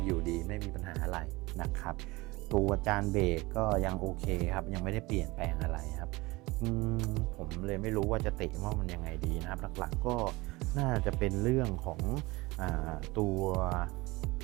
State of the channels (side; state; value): left; quieter; 22.3 dB